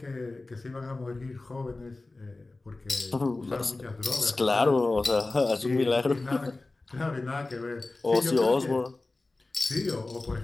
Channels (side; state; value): right; quieter; 3.2 dB